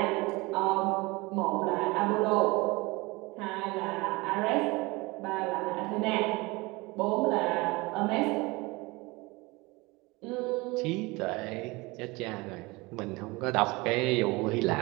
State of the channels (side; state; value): left; quieter; 23.9 dB